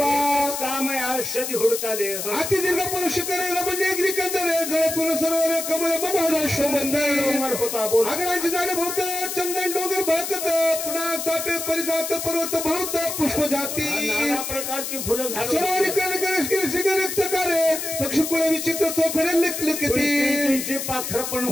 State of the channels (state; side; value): noise; left; hiss, 5 dB below the sound